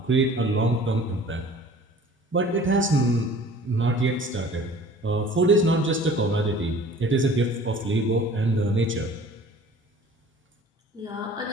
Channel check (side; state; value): both; normal; correlation 0.47